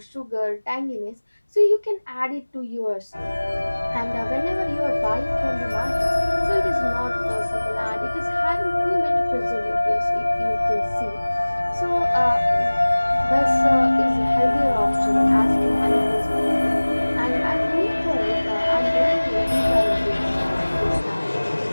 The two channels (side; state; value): both; inverted; correlation -1.00